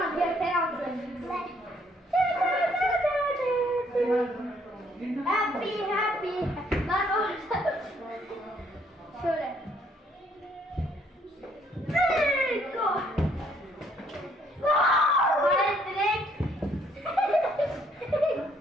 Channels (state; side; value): normal; both; correlation 0.67